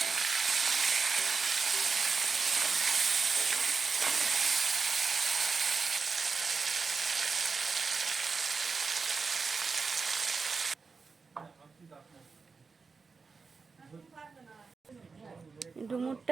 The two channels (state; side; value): quieter; left; 4.8 dB